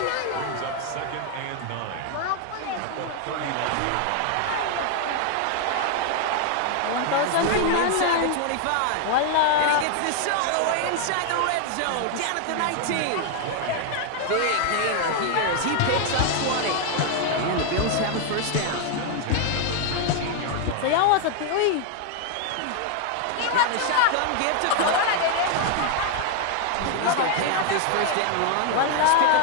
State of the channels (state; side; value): different; both; correlation 0.00